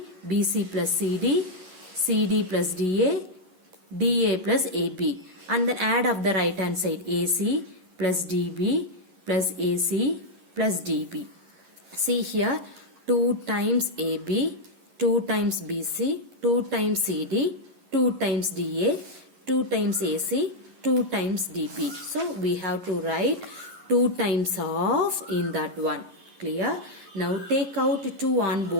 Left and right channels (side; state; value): left; late; 11 ms